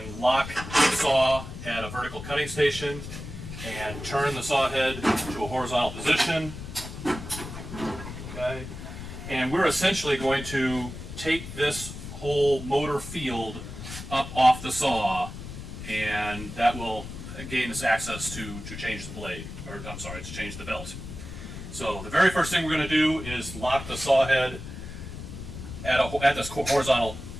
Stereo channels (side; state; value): left; noise; rumble, 10 dB below the sound